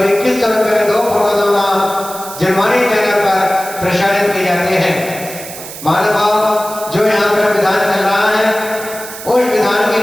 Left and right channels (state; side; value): noise; right; hiss, 12 dB below the sound